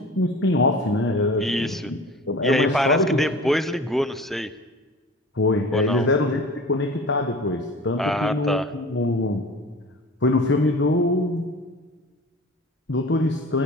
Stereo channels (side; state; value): both; normal; correlation 0.39